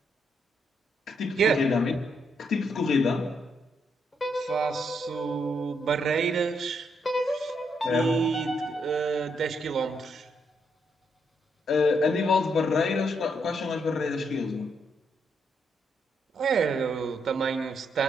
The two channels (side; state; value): both; normal; correlation 0.77